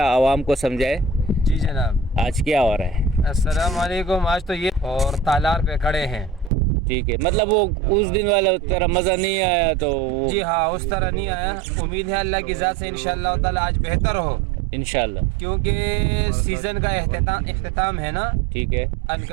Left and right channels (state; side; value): drops out; left; at 6.5 s